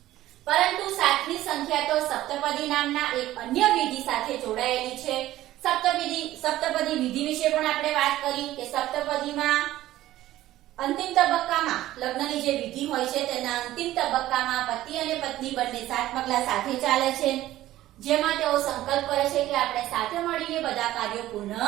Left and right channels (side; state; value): left; quieter; 14.8 dB